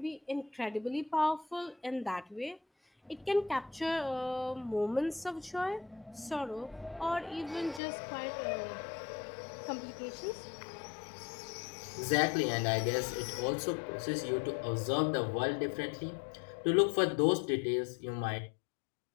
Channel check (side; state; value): right; drops out; at 7.8 s